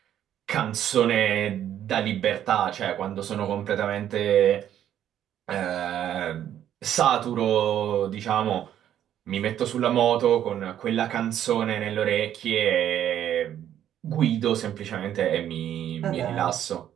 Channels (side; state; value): left; quieter; 10.7 dB